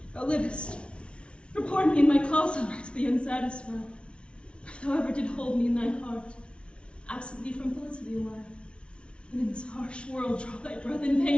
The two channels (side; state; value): right; late; 0.059 ms